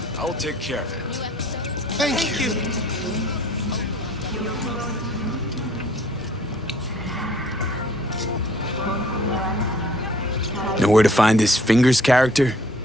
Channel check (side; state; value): both; normal; correlation 0.56